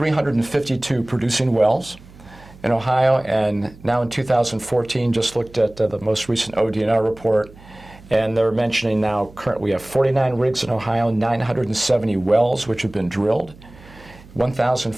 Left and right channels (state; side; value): noise; right; hum, 22 dB below the sound